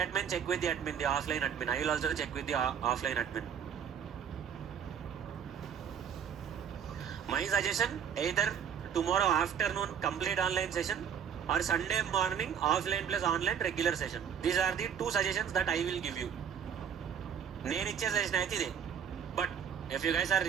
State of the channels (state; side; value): quieter; left; 7.9 dB